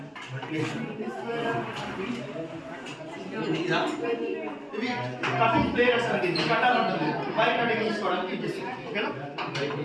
ఇవి కటింగ్ ప్లేయర్స్ అంటే కట్టాలి ఉంటుంది, వైర్ కటింగ్ తీసుకోవడానికి యూజ్ చేస్తాం. ఓకేనా?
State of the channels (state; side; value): identical; both; correlation 1.00